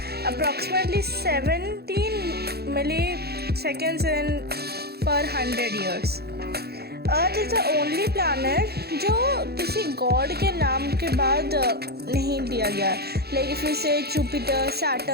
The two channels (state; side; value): late; left; 0.46 ms